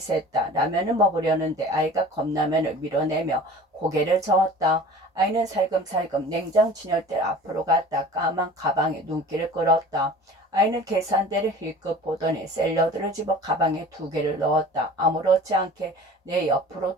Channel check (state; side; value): normal; both; correlation 0.42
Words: 라면을 먹으려는데 아이가 컵라면을 밀어내며 고개를 저었다. 아이는 살금살금 냉장 진열대 앞으로 갔다. 까만 가방에 눈길을 끌었다. 아이는 계산대를 힐끗 보더니 샐러드를 집어 가방에 2개를 넣었다. 아무렇지 않게 내 옆으로